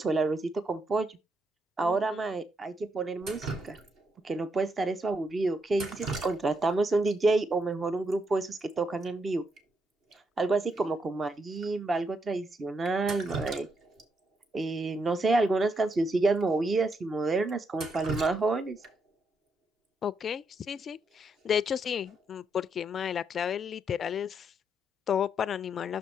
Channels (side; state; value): both; normal; correlation 0.79